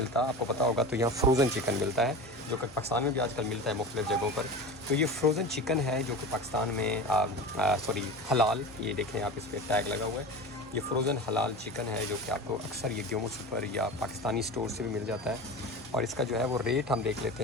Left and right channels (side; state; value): both; normal; correlation 0.30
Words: आपको पता होगा। तो यहाँ फ्रोज़न चिकन मिलता है जो कि पाकिस्तान में भी आजकल मिलता है मुख्तलिफ़ जगहों पर। तो ये फ्रोज़न चिकन है जो कि पाकिस्तान में सॉरी हलाल, ये देखें आप, इस पर टैग लगा हुआ है। ये फ्रोज़न हलाल चिकन है जो कि आपको अक्सर ये ग्योमो सुपर या पाकिस्तानी स्टोर से भी मिल जाता है। और इसका जो है वो रेट हम देख लेते